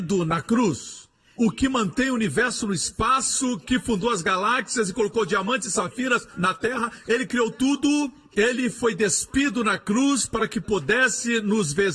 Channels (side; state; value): both; identical; correlation 1.00